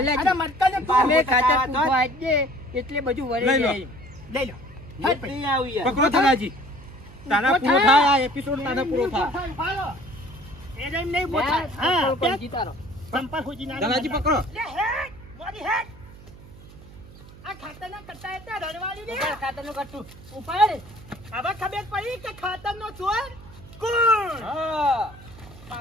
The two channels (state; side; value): noise; right; hum, 19 dB below the sound